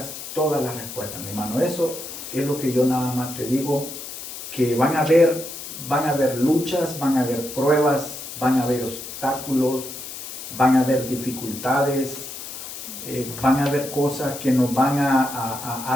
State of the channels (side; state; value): left; noise; hiss, 10 dB below the sound